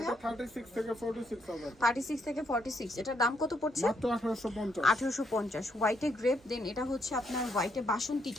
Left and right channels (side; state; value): both; normal; correlation 0.74